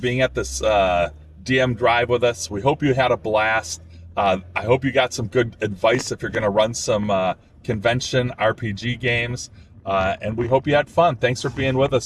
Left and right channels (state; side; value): identical; both; correlation 1.00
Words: at this DM drive with us. We hope you had a blast. I hope you got some good advice if you're going to run some convention RPG games. And we hope you had fun. Thanks for being with